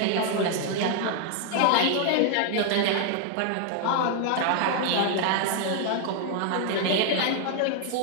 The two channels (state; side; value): different; both; correlation 0.00